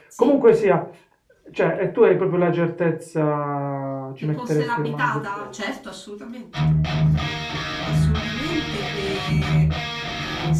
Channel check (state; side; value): identical; both; correlation 1.00